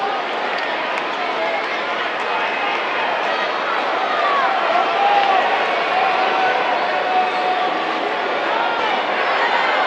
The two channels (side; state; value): both; identical; correlation 1.00